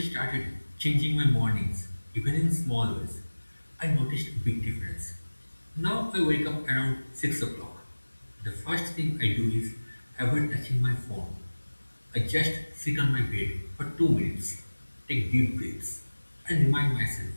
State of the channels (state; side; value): inverted; both; correlation -1.00